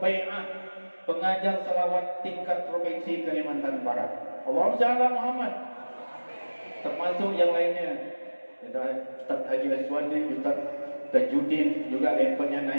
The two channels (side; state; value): both; inverted; correlation -1.00